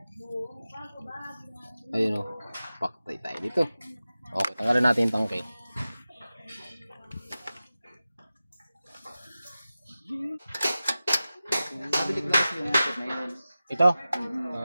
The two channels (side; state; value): both; inverted; correlation -0.95